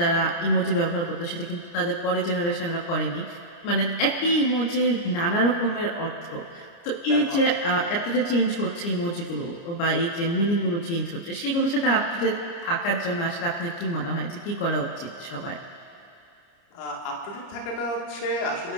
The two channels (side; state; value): right; late; 29 ms